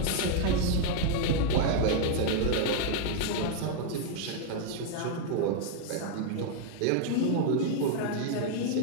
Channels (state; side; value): different; both; correlation 0.00